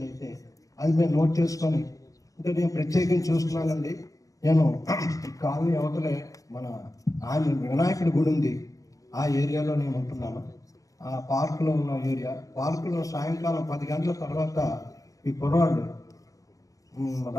అది మేము నోట్ చేసుకొని, అంటే నేను ప్రత్యేకించి చూస్తున్నానండి. నేను కాలనీ అవతలే మన వినాయకుడి గుడి ఉంది, ఆ ఏరియాలో నేను ఉంటున్నాను. ఆ పార్కులో ఉన్న ఏరియా, పార్కులో సాయంకాలం 10 గంటల తర్వాత ఈ కుర్రాళ్ళు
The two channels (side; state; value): right; late; 0.16 ms